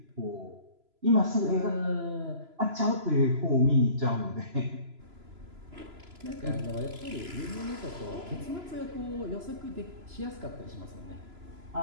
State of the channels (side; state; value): left; late; 3.0 ms